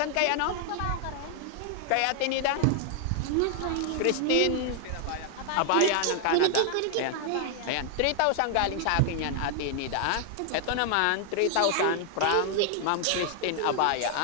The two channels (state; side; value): different; both; correlation 0.00